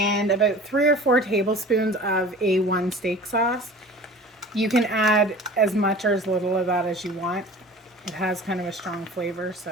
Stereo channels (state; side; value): normal; both; correlation 0.41